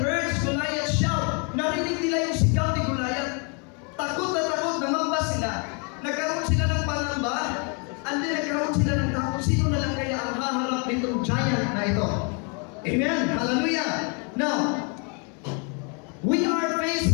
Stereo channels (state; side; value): quieter; right; 36.3 dB